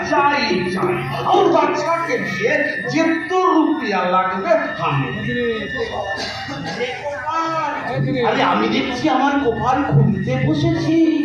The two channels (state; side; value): identical; both; correlation 1.00